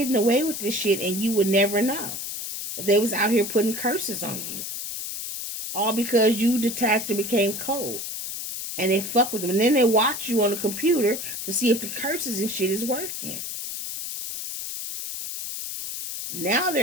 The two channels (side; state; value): left; noise; hiss, 6 dB below the sound